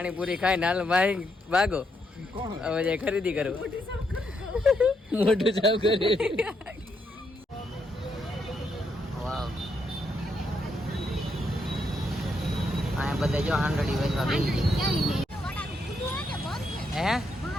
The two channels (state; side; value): normal; both; correlation 0.78